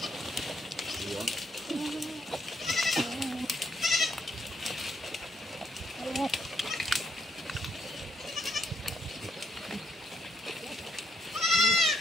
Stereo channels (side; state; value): both; normal; correlation 0.74